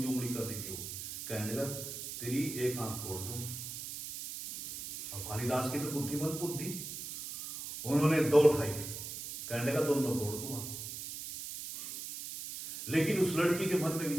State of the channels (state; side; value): noise; right; hiss, 8 dB below the sound